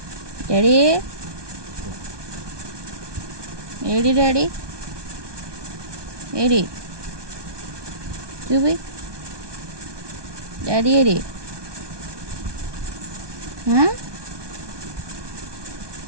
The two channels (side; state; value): left; late; 1.2 ms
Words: daddy AD daddy AD చూపి డాడీ ఏడి